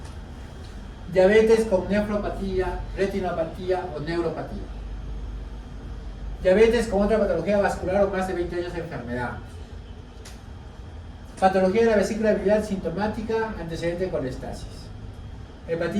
Diabetes con nefropatía, retinopatía o neuropatía. Diabetes con otra patología vascular o más de 20 años de enfermedad. Patología de la vesícula biliar sintomática, antecedente de colestasis.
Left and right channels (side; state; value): both; identical; correlation 1.00